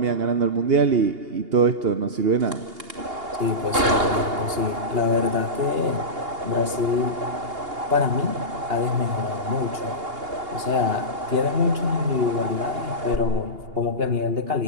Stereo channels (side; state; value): left; late; 2.8 ms